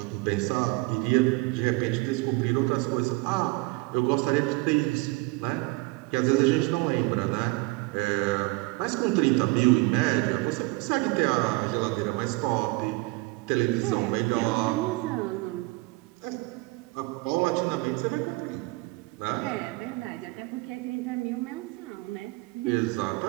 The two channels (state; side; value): quieter; left; 24.1 dB